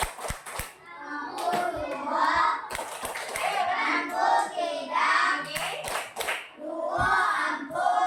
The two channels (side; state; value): both; identical; correlation 1.00